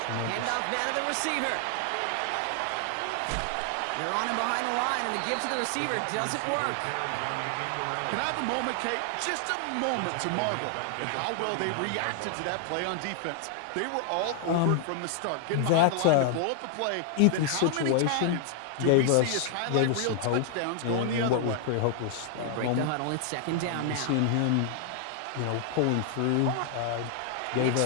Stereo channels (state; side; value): different; both; correlation 0.00